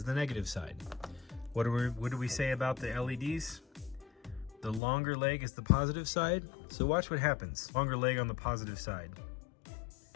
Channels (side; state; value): right; drops out; at 4.8 s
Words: the negative side. What do we say about the LEDs? The longer leg is the positive side. So watch what happens. Longer leg on the positive side.